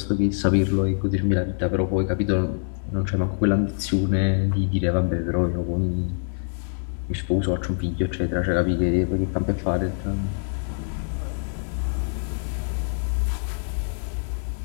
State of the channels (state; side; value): silent; right; 62 dB below the other